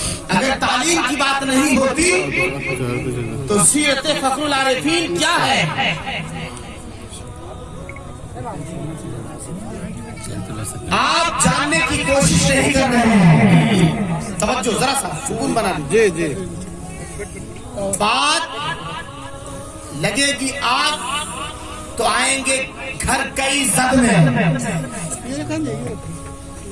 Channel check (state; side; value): identical; both; correlation 1.00